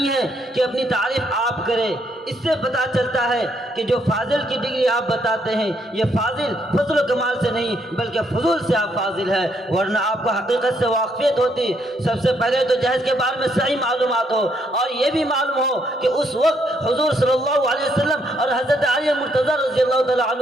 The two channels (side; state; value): both; normal; correlation 0.73